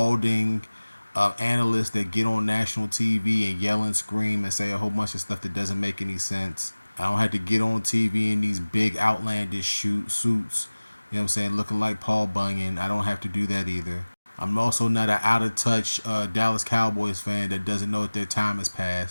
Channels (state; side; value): inverted; both; correlation -1.00